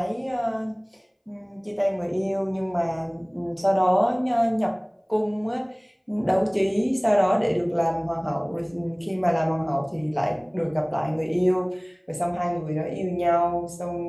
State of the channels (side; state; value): both; identical; correlation 1.00